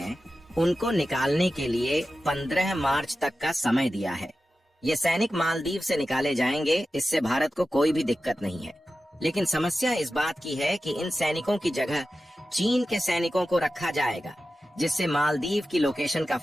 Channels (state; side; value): normal; both; correlation 0.93